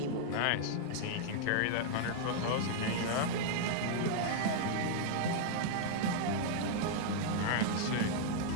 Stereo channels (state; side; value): different; both; correlation -0.01